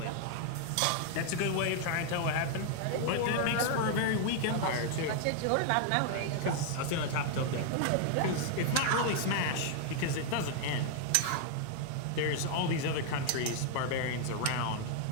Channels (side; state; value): both; different; correlation 0.00